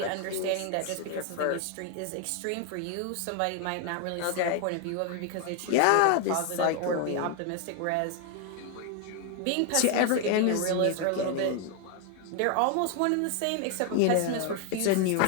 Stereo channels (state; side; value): different; both; correlation 0.00